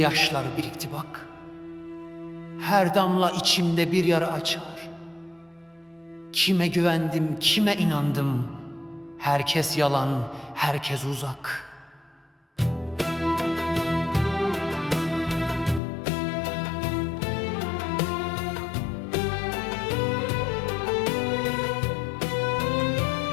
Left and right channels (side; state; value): right; drops out; at 15.8 s